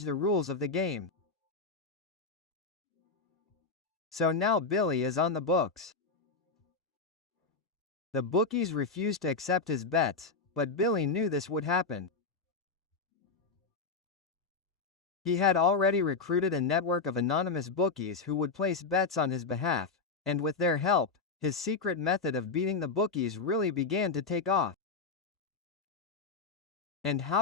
the rules of the game. So now Billy is on the books. The bookies refused to accept his bets, but Billy knew this would happen. He had already recruited a network of anonymous bookies who would place bets on his behalf, and with their help, his secret method of beating the bookies really began to take off. And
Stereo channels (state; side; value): quieter; right; 4.3 dB